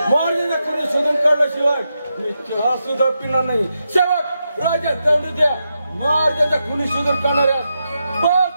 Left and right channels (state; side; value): inverted; both; correlation -0.86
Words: महाराजांना कोणी शोधून काढल्याशिवाय मी चहा सुद्धा पिणार नाही. सेवक राजा दंड द्या. महाराजांचा कोणी शोधून काढणाऱ्या